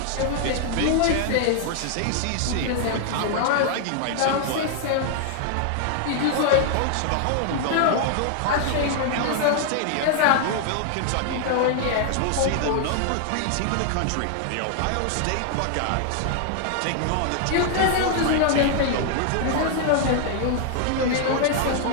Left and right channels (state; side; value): different; both; correlation -0.01